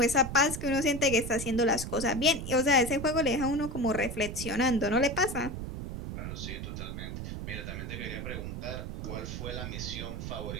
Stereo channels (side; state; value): right; noise; rumble, 6 dB below the sound